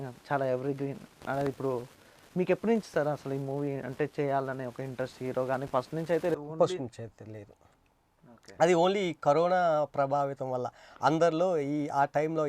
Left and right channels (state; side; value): identical; both; correlation 1.00